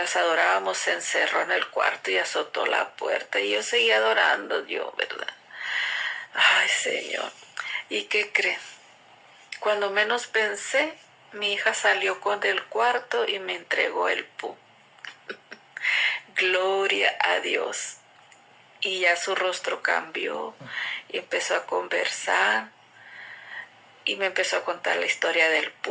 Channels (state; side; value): identical; both; correlation 1.00